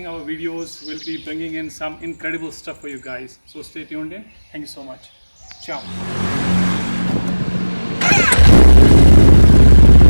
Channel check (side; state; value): both; inverted; correlation -1.00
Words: our videos. We'll be bringing in some incredible stuff for you guys. So stay tuned in. Thank you so much. Ciao.